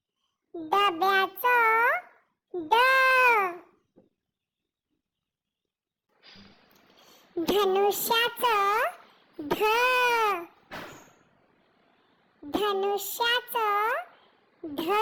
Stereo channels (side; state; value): both; identical; correlation 1.00